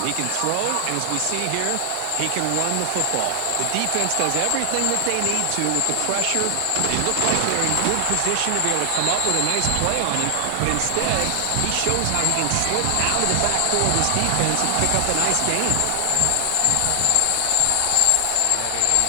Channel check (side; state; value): both; different; correlation 0.00